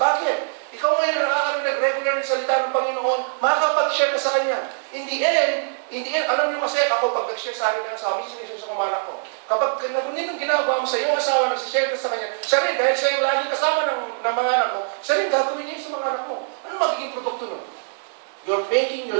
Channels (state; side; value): silent; left; 63 dB below the other